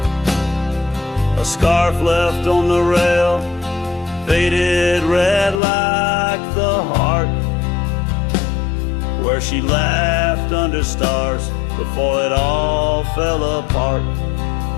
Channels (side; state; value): right; drops out; at 5.6 s